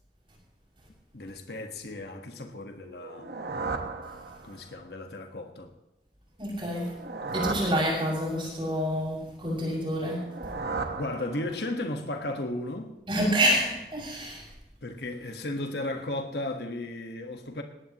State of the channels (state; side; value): normal; both; correlation 0.30